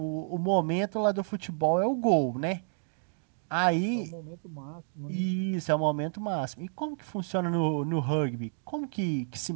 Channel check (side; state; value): left; silent; digital silence